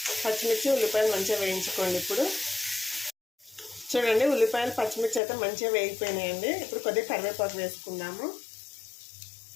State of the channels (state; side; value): drops out; right; at 5.2 s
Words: పచ్చిమిర్చి ఉల్లిపాయలు మంచిగా వేయించుకోండి. ఇప్పుడు చూడండి, ఉల్లిపాయలు పచ్చిమిర్చి అయితే మంచిగా వేగిపోయినాయండి. ఇప్పుడు కొద్దిగా కరివేపాకు వేసుకుందాము,